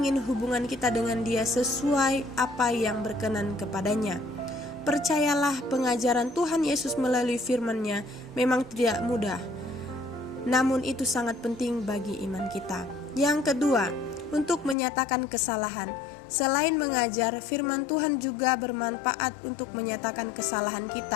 hubungan kita dengan Dia sesuai apa yang berkenan kepadanya. Percayalah, pengajaran Tuhan Yesus melalui firman-Nya memang tidak mudah, namun itu sangat penting bagi iman kita. Yang kedua, untuk menyatakan kesalahan. Selain mengajar, firman Tuhan juga bermanfaat untuk menyatakan kesalahan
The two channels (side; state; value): right; drops out; at 14.8 s